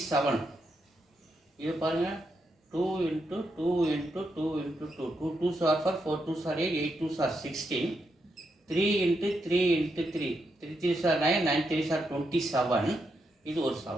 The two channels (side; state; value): both; normal; correlation 0.82